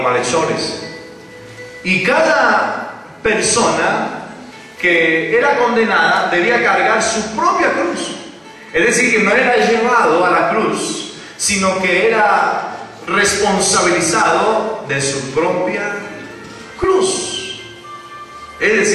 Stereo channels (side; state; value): both; identical; correlation 1.00